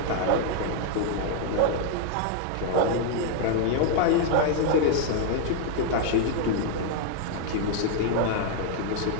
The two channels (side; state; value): both; different; correlation 0.00